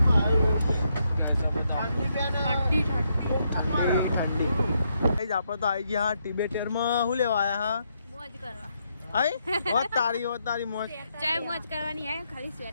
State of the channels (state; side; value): inverted; both; correlation -0.78